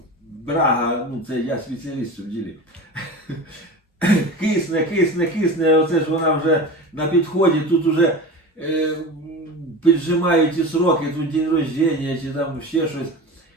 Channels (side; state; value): both; normal; correlation 0.31